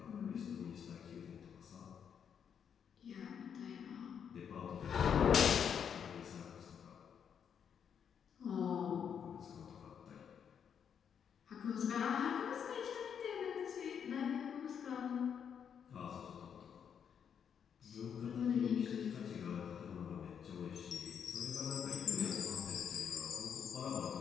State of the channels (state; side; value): quieter; right; 7.8 dB